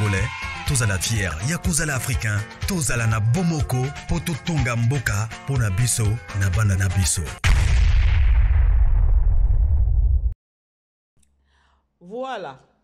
Tous à la fière, Yakozala Africain. Tous à la na Bomoko, Poto Tonga Mboka, Pona Biso, na Banana Biso. Voilà.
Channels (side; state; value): both; identical; correlation 1.00